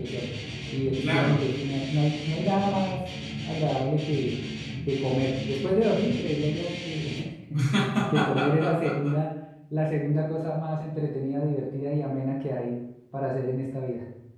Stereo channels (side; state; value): both; identical; correlation 1.00